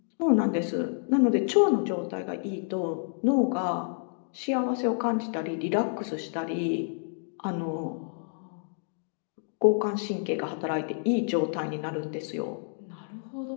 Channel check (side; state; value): right; silent; digital silence